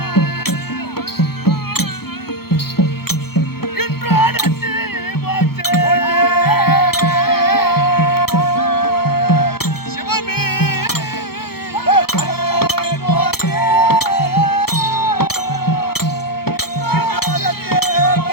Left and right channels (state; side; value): late; right; 0.95 ms